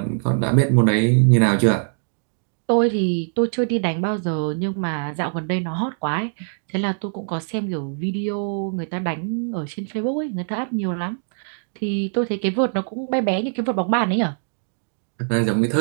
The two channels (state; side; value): silent; left; digital silence